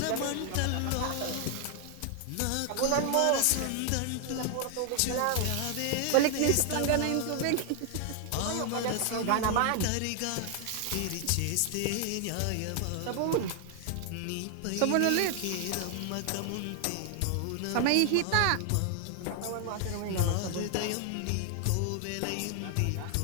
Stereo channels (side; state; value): both; different; correlation 0.00